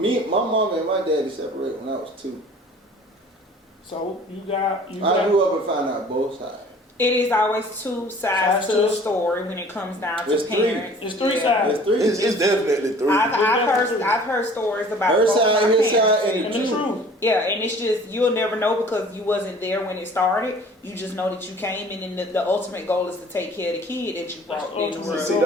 mom and my daddy separated when I was 2. so you got. I grew up and found out both sides. It is always two sides Sides to to the it. story when it comes down to It's three. parents. It's three Yeah. sides. There's 3. It's definitely 3. I've heard stories about Her both side, my his parents. side, And the truth. Yeah, and it's just you'll never know because you wasn't there when it started. You just know that you came in, and the ultimate goal is to take care of the kid that you brought That's into the ultimate. world. See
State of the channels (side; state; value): both; normal; correlation 0.49